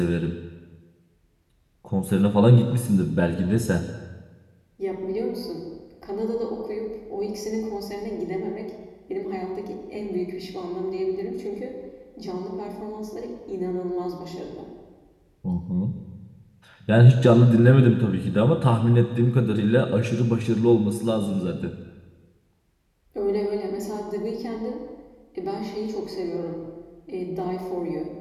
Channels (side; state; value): both; identical; correlation 1.00